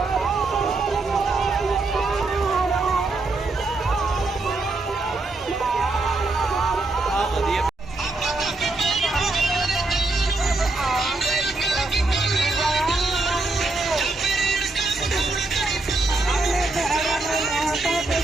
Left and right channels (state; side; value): quieter; left; 3.2 dB